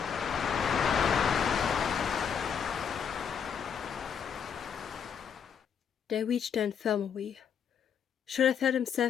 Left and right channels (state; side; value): quieter; right; 7.4 dB